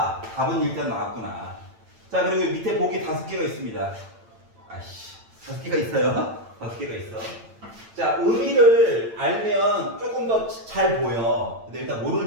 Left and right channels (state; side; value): late; left; 8.9 ms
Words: 답은 일단 나왔구나. 자, 그리고 밑에 보기 5개가 있습니다. 아이씨, 5개가 있어요. 5개가 있어. 자, 의미를 알면 조금 더 잘 보여. 근데 일단 모르는